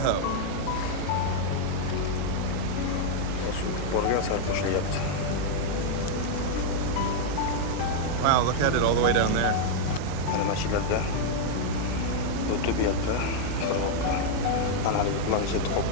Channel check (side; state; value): both; different; correlation -0.01